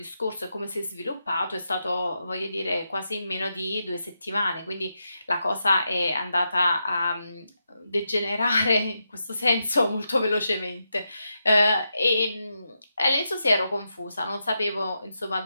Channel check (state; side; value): inverted; both; correlation -0.86